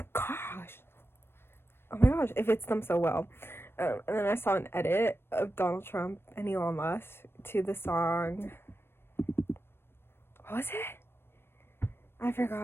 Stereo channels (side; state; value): right; late; 0.11 ms